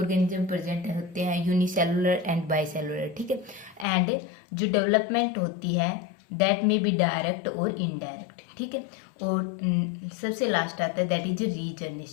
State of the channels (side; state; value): right; drops out; at 3.9 s